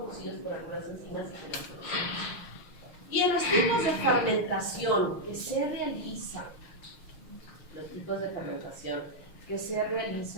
por algunas enzimas y en los tipos de fermentación que se realizan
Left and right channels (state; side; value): late; right; 6.5 ms